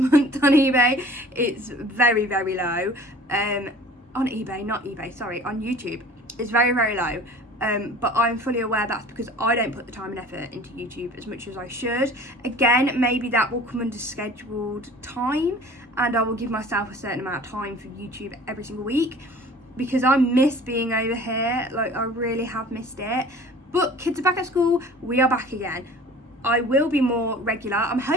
on eBay. It's very, very low. On eBay, not eBay, sorry, on YouTube. It's very, very low. But I'm fully aware that's because I don't put the time and effort into YouTube as much as I should. Again, maybe that will come under scheduled time, and I will give myself a certain amount of time for YouTube every single week, because I miss being over here. Like, I really have missed it. But kids are back at school, we are back again. I will be more regular. I'm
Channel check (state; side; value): normal; both; correlation 0.45